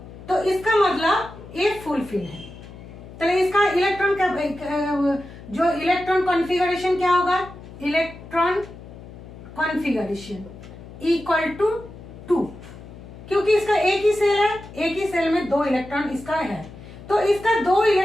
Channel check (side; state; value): left; noise; hum, 16 dB below the sound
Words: तो इसका मतलब ये फुलफिल है। तो इसका इलेक्ट्रॉन का जो इलेक्ट्रॉन कॉन्फ़िगरेशन क्या होगा, इलेक्ट्रॉन कॉन्फ़िगरेशन इक्वल टू 2, क्योंकि इसका एक ही सेल है, एक ही सेल में 2 इलेक्ट्रॉन इसका है, तो इसका 2